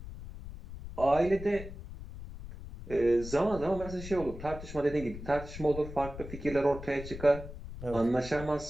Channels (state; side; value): noise; left; rumble, 11 dB below the sound